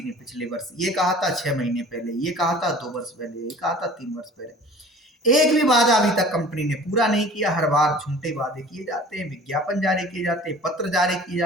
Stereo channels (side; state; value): both; normal; correlation 0.45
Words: ने पिछले वर्ष ये कहा था, 6 महीने पहले ये कहा था, 2 वर्ष पहले ये कहा था, 3 वर्ष पहले। एक भी वादा अभी तक कंपनी ने पूरा नहीं किया। हर बार झूठे वादे किए जाते हैं, विज्ञापन जारी किए जाते हैं, पत्र जारी किए